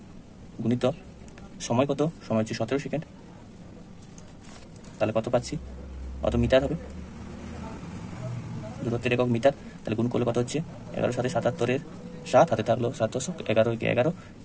গুণিত সময় কত, সময় হচ্ছে 17 সেকেন্ড, তাহলে কত পাচ্ছি, কত মিটার হবে, দূরত্বের একক মিটার। তাহলে গুণ করলে কত হচ্ছে 11 সাথে 77-এর 7, হাতে থাকলো 7 11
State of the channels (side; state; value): both; identical; correlation 1.00